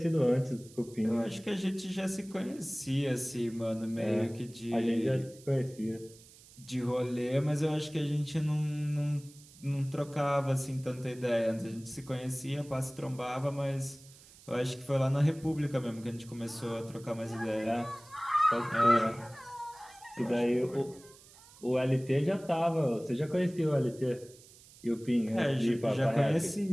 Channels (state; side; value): noise; right; hiss, 23 dB below the sound